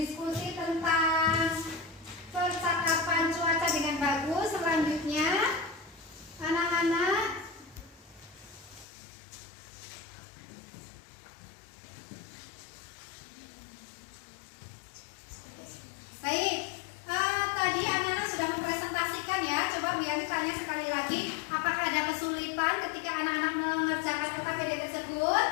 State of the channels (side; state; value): right; drops out; at 8.8 s